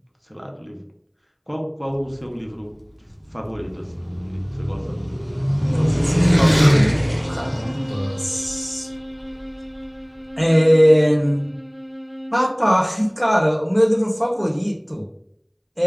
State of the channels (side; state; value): both; identical; correlation 1.00